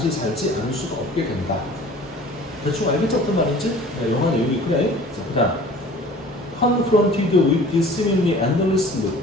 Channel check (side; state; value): both; normal; correlation 0.46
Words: 살지 않을 수가 없게 된다. 대충 알겠죠? 어떤 말인지? 네, 영화 내용이 그래. 자, 그 다음 confronted with this seemingly endless loop.